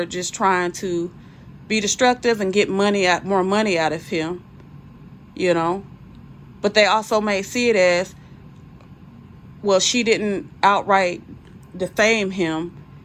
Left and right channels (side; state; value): both; identical; correlation 1.00